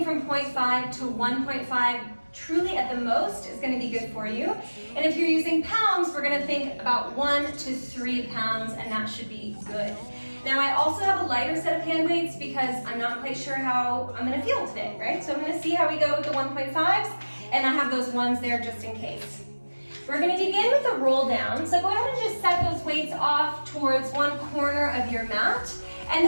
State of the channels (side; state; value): both; inverted; correlation -1.00